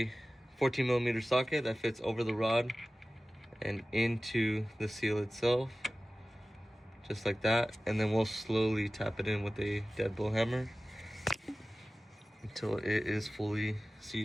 14mm socket that fits over the rod and into the seal itself, just like that. And then we'll slowly tap it in with a deadbolt hammer until it is fully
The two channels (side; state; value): both; normal; correlation 0.96